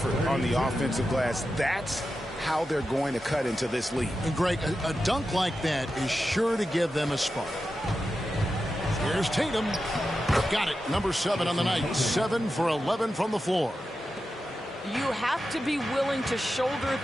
on the offensive glass. That's how they're going to cut into this lead. And Greg, a dunk like that is sure to give them a spark. Here's Tatum. Got it. Number 7 on the night. 7 for 11 from the floor. You have to be willing to shoulder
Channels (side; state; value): both; normal; correlation 0.91